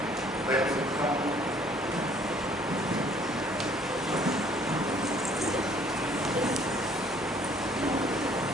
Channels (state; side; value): normal; both; correlation 0.59